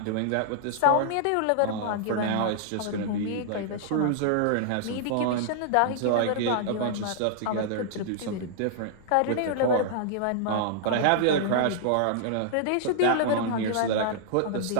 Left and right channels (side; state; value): both; different; correlation -0.01